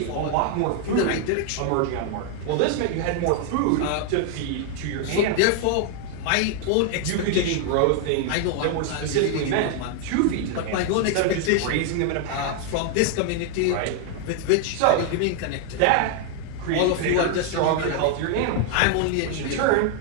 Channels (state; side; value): different; both; correlation 0.00